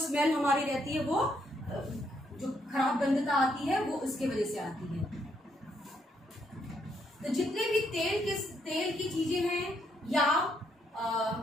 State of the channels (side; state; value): both; normal; correlation 0.74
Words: हमारी रहती है वो जो खराब गंधता आती है वो उसके वजह से आती है। तो जितने भी तेल की चीजें हैं या